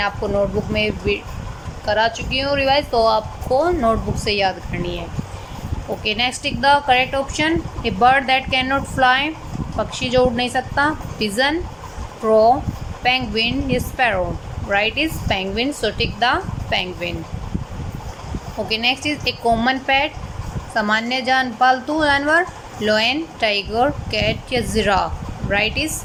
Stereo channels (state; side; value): identical; both; correlation 1.00